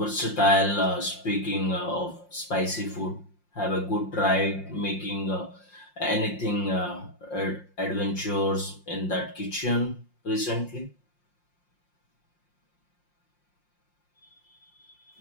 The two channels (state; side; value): late; right; 5.6 ms